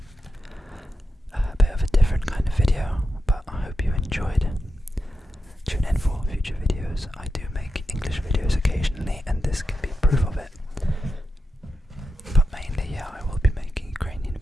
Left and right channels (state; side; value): normal; both; correlation 0.88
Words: A bit of a different kind of video, but I hope you enjoyed. Tune in for future videos. I do make English videos occasionally, and this can be proof of it. But mainly, yeah, I will be making Ukrainian